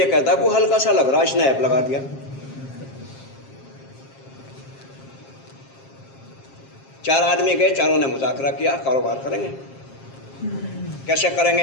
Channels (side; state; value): right; late; 7.5 ms